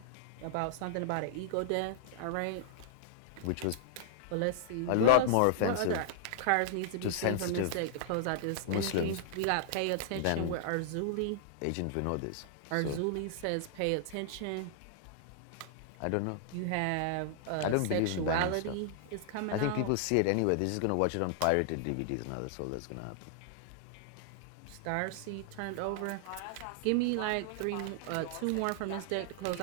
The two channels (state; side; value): different; both; correlation -0.01